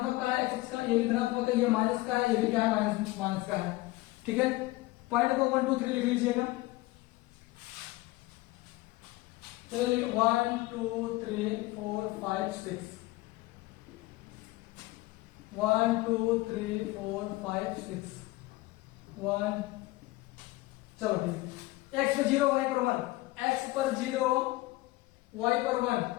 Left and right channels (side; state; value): right; quieter; 19.7 dB